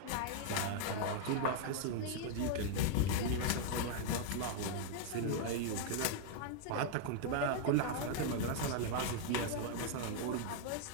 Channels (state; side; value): different; both; correlation 0.00